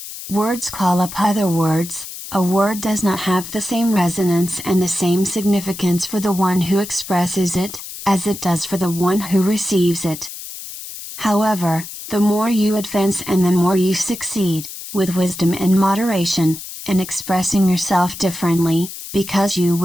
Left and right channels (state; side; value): noise; left; hiss, 11 dB below the sound